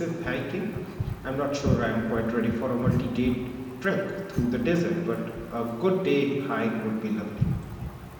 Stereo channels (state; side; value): identical; both; correlation 1.00